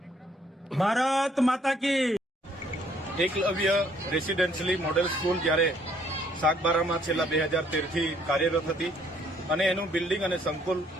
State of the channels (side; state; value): both; normal; correlation 0.65